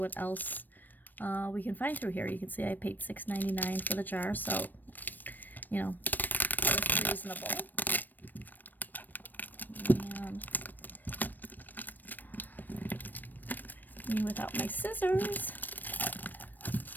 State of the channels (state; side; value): late; right; 0.089 ms